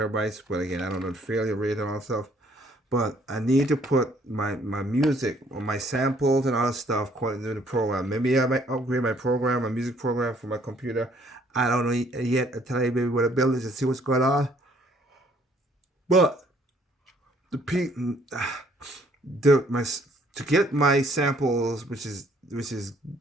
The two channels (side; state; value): both; normal; correlation 0.63